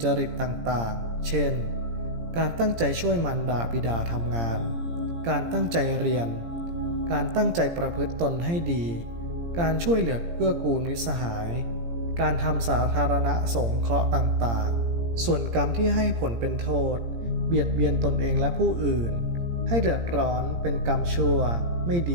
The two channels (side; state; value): left; late; 17 ms